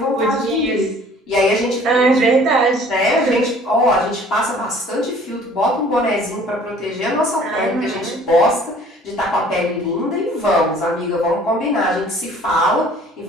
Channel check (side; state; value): both; normal; correlation 0.53